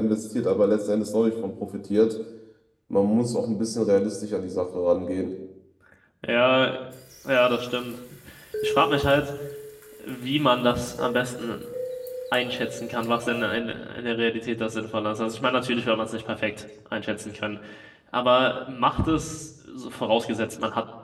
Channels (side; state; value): both; identical; correlation 1.00